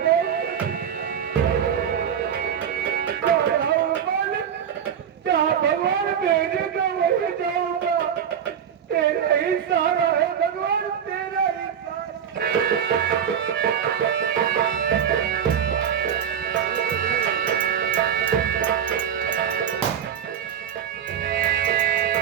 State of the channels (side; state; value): left; quieter; 8.6 dB